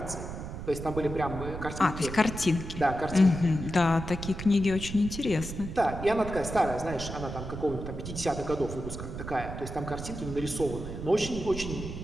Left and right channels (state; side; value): noise; right; rumble, 8 dB below the sound